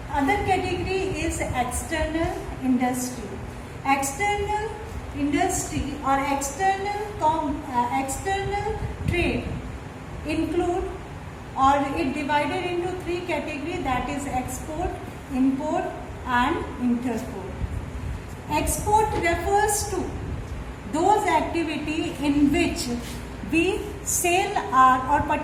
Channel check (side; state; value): both; identical; correlation 1.00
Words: other category is external industry. External industry or external trade include, or it divided into three categories, that is export, import and interport. Export refers to those activity in which we sell or